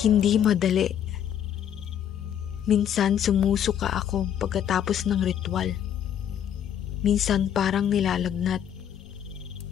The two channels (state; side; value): quieter; right; 9.5 dB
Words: madali. Minsan sumusuka ako pagkatapos ng ritual. Minsan parang nilalagnat.